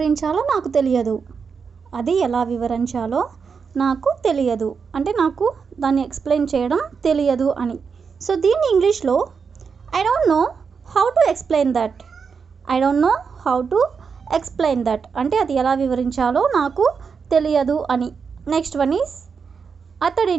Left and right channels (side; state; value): left; quieter; 5.8 dB